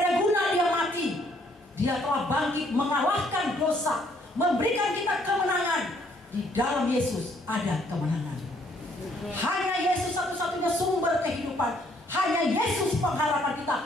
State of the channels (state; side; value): normal; both; correlation 0.66